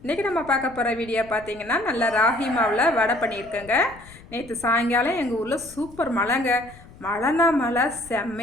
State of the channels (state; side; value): noise; left; rumble, 21 dB below the sound